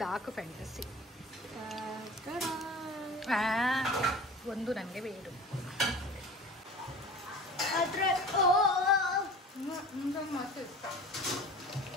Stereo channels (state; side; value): normal; both; correlation 0.38